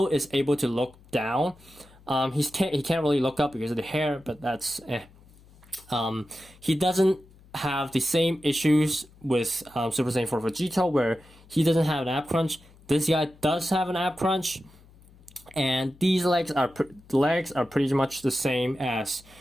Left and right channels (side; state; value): left; noise; hum, 26 dB below the sound